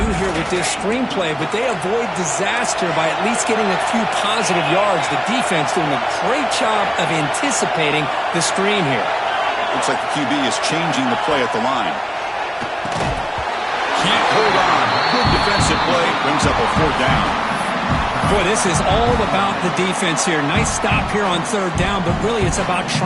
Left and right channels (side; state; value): both; identical; correlation 1.00